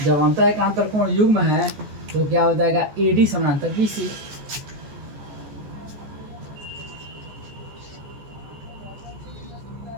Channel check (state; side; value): late; left; 14 ms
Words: जब अंतः एकांतर कोण युग्म है तो क्या हो जाएगा, AD समानांतर BC।